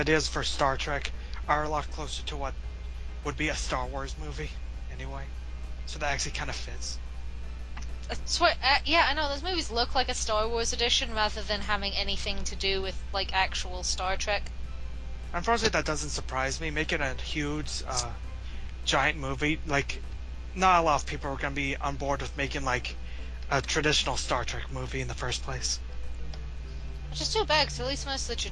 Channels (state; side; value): identical; both; correlation 1.00